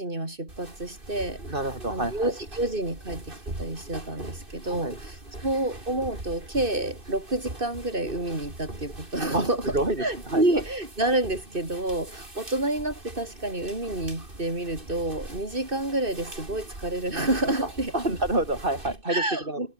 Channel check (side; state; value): left; late; 2.6 ms